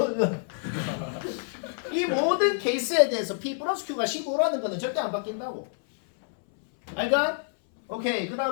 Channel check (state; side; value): silent; right; 60 dB below the other